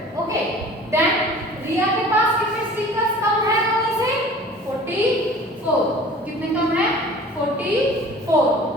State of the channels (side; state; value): both; normal; correlation 0.45